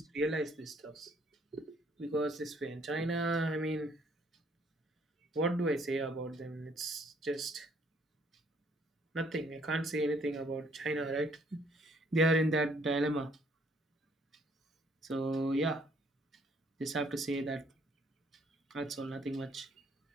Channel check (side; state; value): both; normal; correlation 0.64